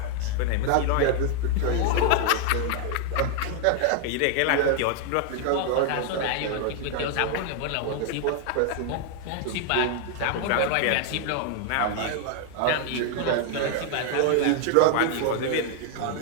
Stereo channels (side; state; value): both; different; correlation 0.00